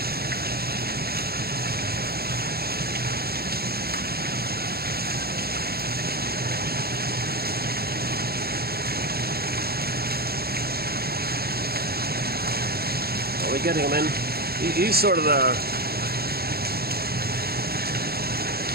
Are we getting him in? He's sort of the.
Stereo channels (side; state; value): left; late; 0.45 ms